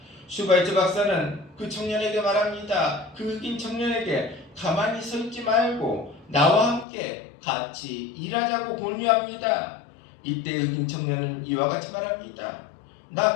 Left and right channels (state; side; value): drops out; right; at 6.9 s